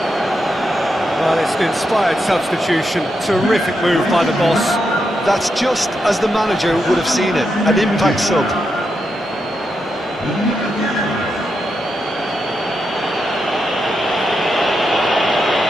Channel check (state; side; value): normal; both; correlation 0.84